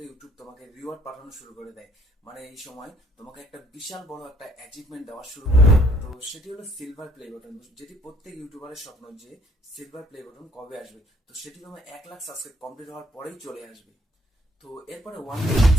ইউটিউব তোমাকে রিওয়ার্ড পাঠানো শুরু করে দেয়। মানে এই সময় তোমাকে একটা বিশাল বড় একটা অ্যাচিভমেন্ট দেওয়া শুরু করে। তো সেটি হলো সিলভার প্লে বাটন, যেটি প্রত্যেক ইউটিউবারের স্বপ্ন যে সিলভার প্লে বাটন কবে আসবে। তো সেটি তোমার 1,00,000 সাবস্ক্রাইব কমপ্লিট হওয়ার পরেই চলে আসবে। তো এরপরে 1 মিলিয়ন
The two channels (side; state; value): both; normal; correlation 0.64